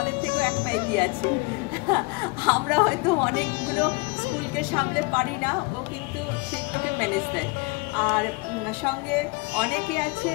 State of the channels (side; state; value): right; quieter; 26.4 dB